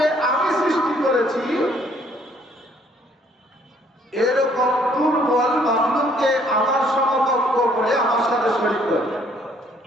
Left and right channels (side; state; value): both; normal; correlation 0.63